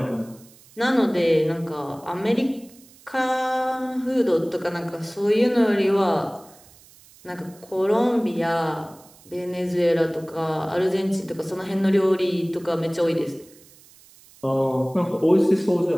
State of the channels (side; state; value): right; noise; hiss, 25 dB below the sound